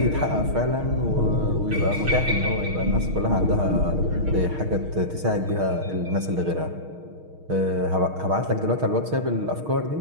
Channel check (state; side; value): late; left; 6.4 ms